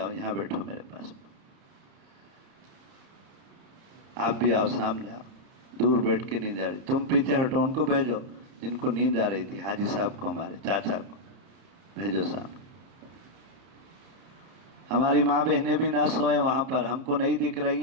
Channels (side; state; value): left; late; 30 ms